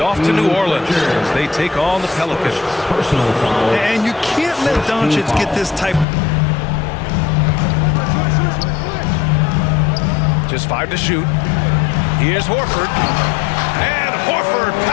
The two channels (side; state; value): right; drops out; at 6.1 s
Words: to New Orleans as they take on the Pelicans. Personal foul. And you can't let Doncic get this type. Just 5 to shoot. Here's Horford. And Horford